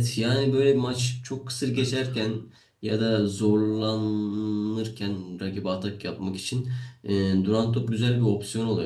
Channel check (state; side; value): identical; both; correlation 1.00